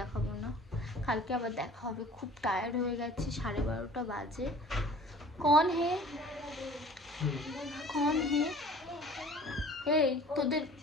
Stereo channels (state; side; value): normal; both; correlation 0.48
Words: না। কালকে আবার দেখা হবে। খুব টায়ার্ড হয়ে গেছি, 12:30 বাজে। কন হে এই তোদের